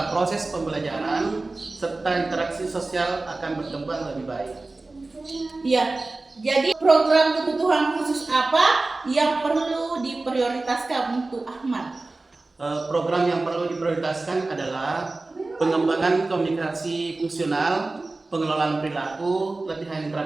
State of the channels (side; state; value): left; quieter; 3.3 dB